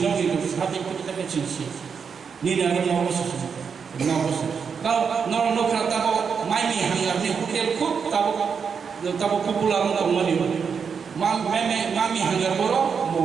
साथे कतका चिंसि निनानि नवस गाव नखरा ताबो माइनि हांगारनि होटेल खुब ताबो पपुलार दंमोन मामी हांगार बरो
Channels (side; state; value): left; quieter; 6.3 dB